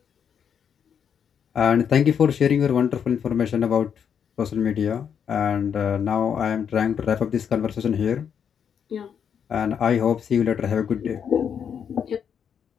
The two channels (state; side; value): quieter; right; 7.7 dB